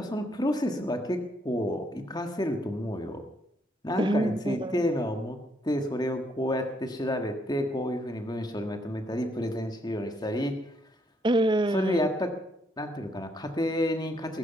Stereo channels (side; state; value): both; normal; correlation 0.73